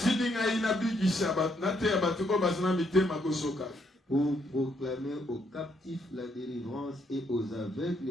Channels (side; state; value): both; normal; correlation 0.73